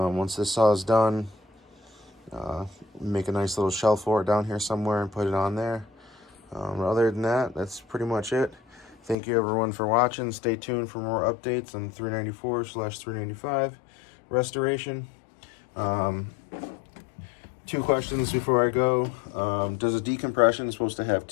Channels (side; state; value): right; drops out; at 9.2 s